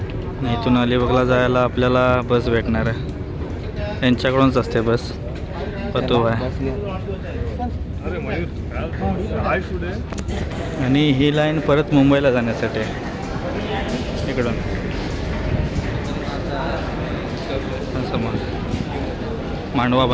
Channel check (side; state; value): both; identical; correlation 1.00